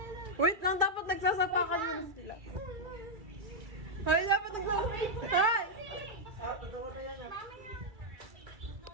Wait lang, dapat nagsasapakan mo na sila. Ay, dapat nagsasapakan. Ay! Ah, totoo na yan.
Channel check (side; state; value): left; late; 2.3 ms